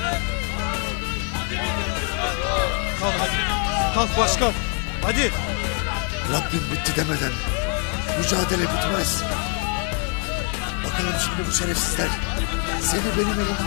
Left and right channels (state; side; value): quieter; right; 37.9 dB